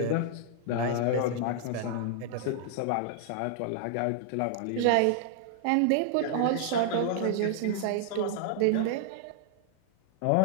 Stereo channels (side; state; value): both; different; correlation -0.01